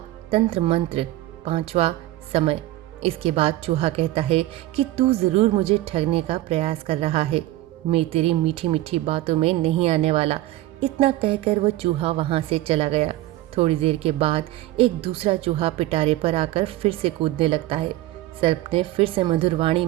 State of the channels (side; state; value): left; quieter; 16.1 dB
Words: तंत्र मंत्र, पांचवा, समय। इसके बाद चूहा कहता है कि तू जरूर मुझे ठगने का प्रयास कर रहा है, मैं तेरी मीठी मीठी बातों में नहीं आने वाला। इतना कहकर वो चूहा वहां से चला गया। थोड़ी देर के बाद एक दूसरा चूहा पिटारे पर आकर फिर से कूदने लगता है। सर्प ने फिर से मधुर वाणी